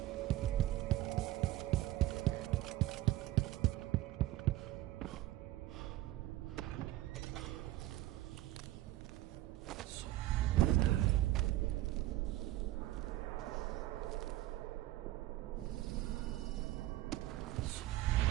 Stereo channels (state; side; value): quieter; left; 15.6 dB